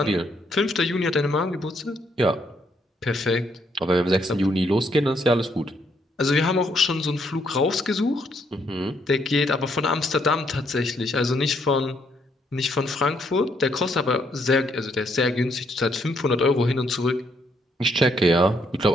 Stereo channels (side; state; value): both; normal; correlation 0.72